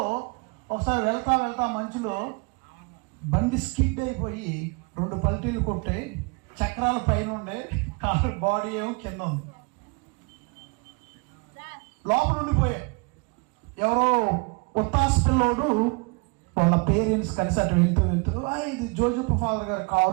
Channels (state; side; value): quieter; left; 30.3 dB